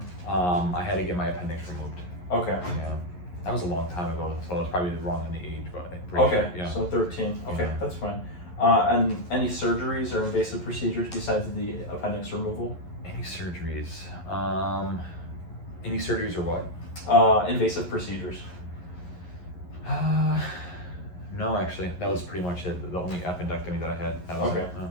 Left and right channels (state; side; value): late; right; 11 ms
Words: I had to get my appendix removed. Okay. Yeah. That was a long time ago, so I was probably wrong on the age, but I'm pretty Okay, sure. Yeah. so 13. Okay, Yeah. that's fine. And any surgeries or invasive procedures besides the appendix removal? Any surgeries? Any surgeries or what? Invasive procedures. No, actually, that was pretty much it. The only appendectomy that I had. That was Okay, it.